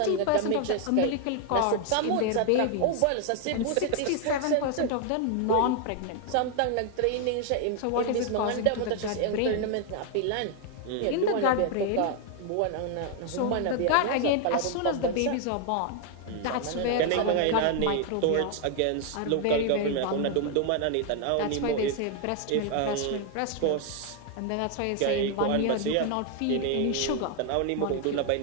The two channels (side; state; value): both; different; correlation 0.00